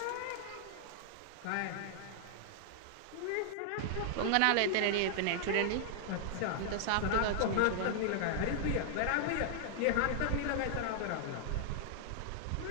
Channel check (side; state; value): both; different; correlation -0.01